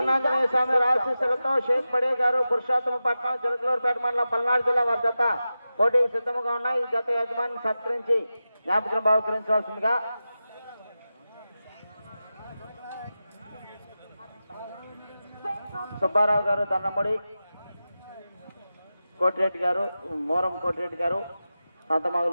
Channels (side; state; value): both; inverted; correlation -0.93